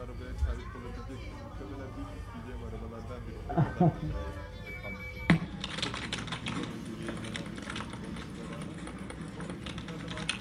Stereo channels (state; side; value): identical; both; correlation 1.00